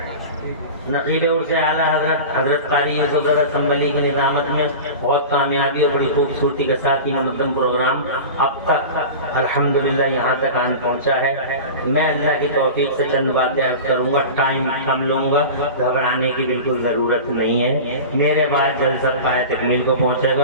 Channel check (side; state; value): both; inverted; correlation -0.31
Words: نقیب عرص اعلیٰ حضرت قاری یوسف زادہ سنبلی کی نظامت میں بہت کامیابی اور بڑی خوبصورتی کے ساتھ یہ منظم پروگرام اب تک الحمدللہ یہاں تک آن پہنچا ہے۔ میں اللہ کی توفیق سے چند باتیں عرض کروں گا، ٹائم کم لوں گا، گھبرانے کی بالکل ضرورت نہیں ہے۔ میرے بعد جلسہ پائے تکمیل کو پہنچے